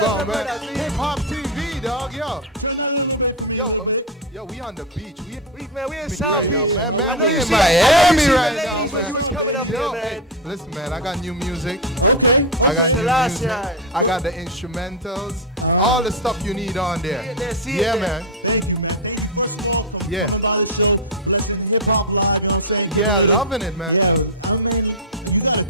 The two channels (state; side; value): normal; both; correlation 0.06